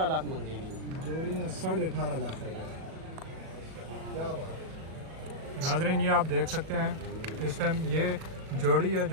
लाख मांगे नहीं। जोड़ी ने 18.5 लाख रुपए। क्या बात है। नाजरीन ये आप देख सकते हैं इस टाइम ये जोड़ी है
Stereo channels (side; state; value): left; late; 37 ms